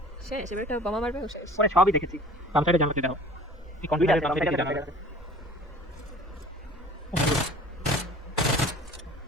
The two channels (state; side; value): normal; both; correlation 0.46